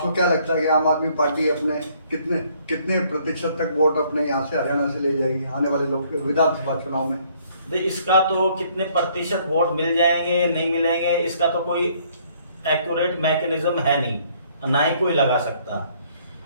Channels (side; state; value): both; inverted; correlation -0.64